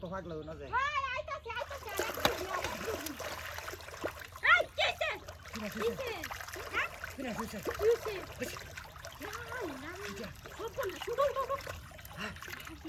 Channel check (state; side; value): identical; both; correlation 1.00